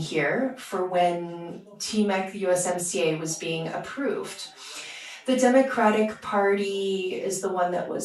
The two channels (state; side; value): identical; both; correlation 1.00